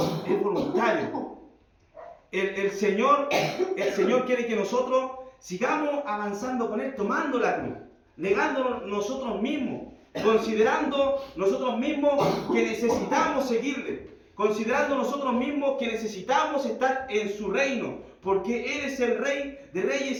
voluntario. El Señor quiere que nosotros sigamos avanzando con Él, tomando la cruz, negándonos nosotros mismos, considerando nosotros mismos que necesitamos seguirle, considerando nosotros mismos que necesitamos estar en su reino, porque Él es el Rey de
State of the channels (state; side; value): identical; both; correlation 1.00